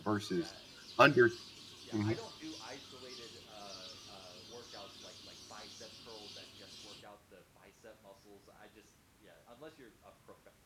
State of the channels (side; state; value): both; identical; correlation 1.00